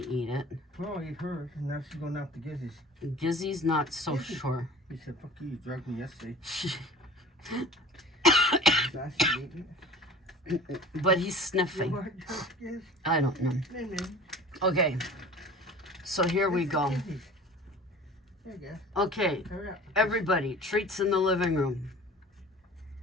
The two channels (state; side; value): normal; both; correlation 0.42